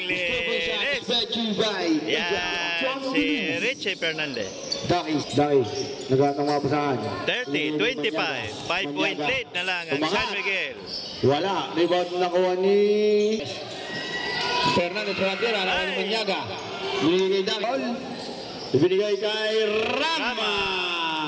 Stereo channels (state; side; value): identical; both; correlation 1.00